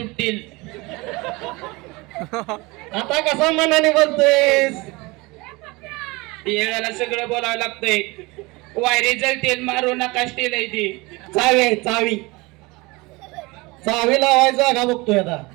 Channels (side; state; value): left; quieter; 24.1 dB